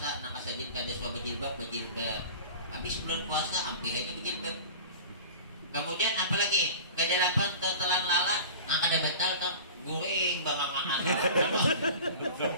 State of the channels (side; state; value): both; inverted; correlation -0.37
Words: nak kasajin kada suah berjilbab. Habis bulan puasa hampir aja berjilbab. Kemudian apa lagi? Kedelapan tetelan lala, kada batal tak guring bangangan.